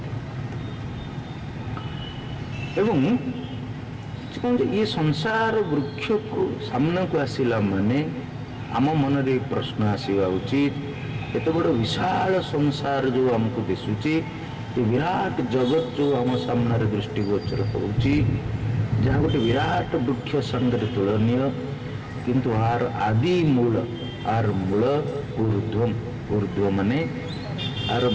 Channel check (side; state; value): both; identical; correlation 1.00